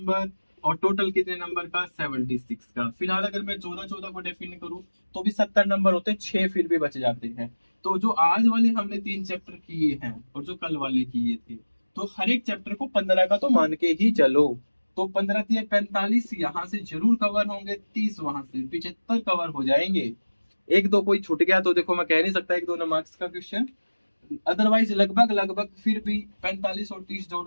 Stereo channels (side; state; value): both; inverted; correlation -1.00